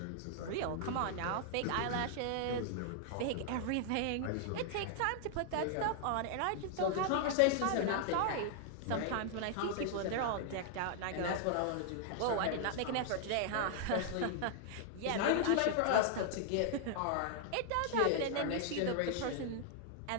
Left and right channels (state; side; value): different; both; correlation -0.01